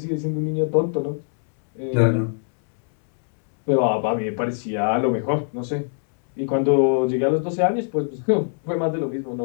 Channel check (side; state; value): right; silent; digital silence